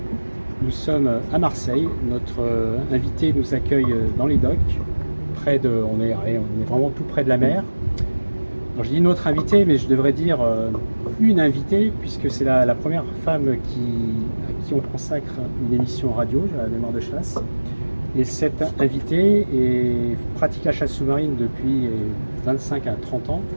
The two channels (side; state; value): both; inverted; correlation -1.00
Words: Nous sommes à Marseille. Notre invité nous accueille dans les docks. On est vraiment tout près de la mer. Alors, je dis notre invité, mais je devrais dire une invitée, puisque c'est la première femme à qui on consacre une émission radio, la Mémoire de chasse. Et cette invitée pratique la chasse sous-marine depuis 25 à 30 ans.